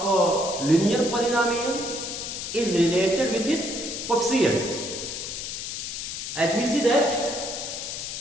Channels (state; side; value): noise; left; hiss, 6 dB below the sound